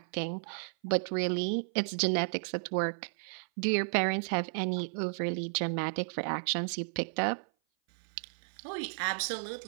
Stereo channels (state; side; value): silent; left; 56 dB below the other